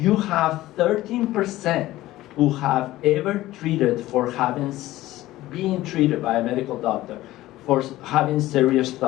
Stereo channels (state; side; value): quieter; right; 16.3 dB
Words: have 13% who have ever treated for being treated by a medical doctor for having serious